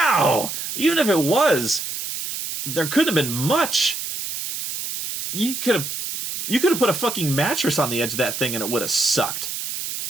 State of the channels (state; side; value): noise; right; hiss, 5 dB below the sound